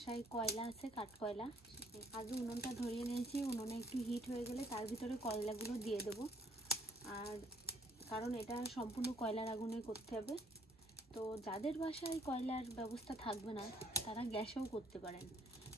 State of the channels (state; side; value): normal; both; correlation 0.63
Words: কয়লা আছে, কাঠ কয়লা। আগে উনুনটা ধরিয়ে নিয়েছি। উনুনে একটু হিট হয়ে গেলে তার ভিতরে কয়লাগুলো দিয়ে দেবো। আর কারণ এটা সম্পূর্ণ কয়লার আগুনে করতে হবে। তো যাদের বাসায় কয়লার ব্যবস্থা থাকবে না তারা গ্যাসেও করতে পারেন।